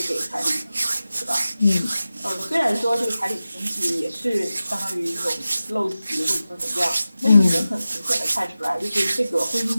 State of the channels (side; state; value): both; inverted; correlation -0.95